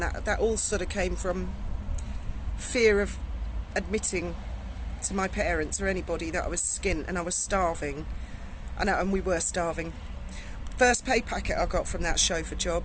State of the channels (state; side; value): identical; both; correlation 1.00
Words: that all sort of came from fear of admitting to my parents or anybody that I was skint and I was starving, and we were starving. First pay packet I got from that chauffeur job,